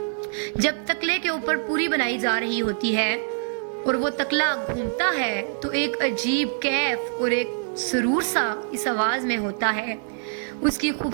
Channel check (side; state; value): left; silent; digital silence